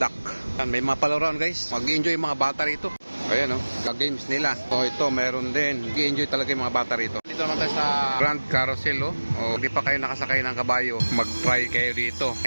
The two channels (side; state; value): both; inverted; correlation -1.00